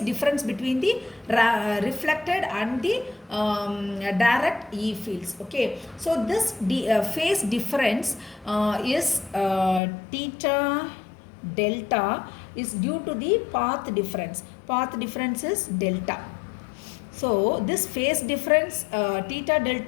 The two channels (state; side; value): drops out; right; at 9.8 s